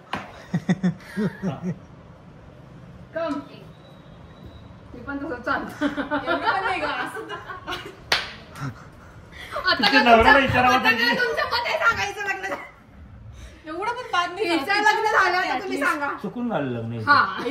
हा. कम मी पण तसं चालतो आता तिच्या काय नवऱ्याला तुमच्या- विचारावं आता काय पाहिजे. तुमच्या मते सांगायचं लग्न झालं? एवढं पण बाद नाही हिचं झालं. लग्न झालं आता तुम्ही सांगा चुकून झालं लग्न हे. हा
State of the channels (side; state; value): both; identical; correlation 1.00